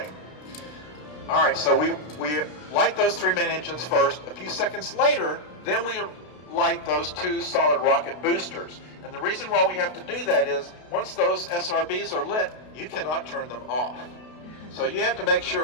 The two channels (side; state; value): right; late; 32 ms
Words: All right, so we light those 3 main engines first. A few seconds later, then we light those 2 solid rocket boosters. And the reason why we have to do that is once those SRBs are lit, you cannot turn them off. So you have to make